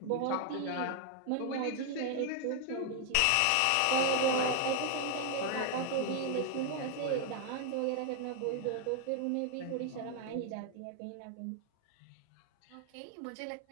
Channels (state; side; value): different; both; correlation 0.00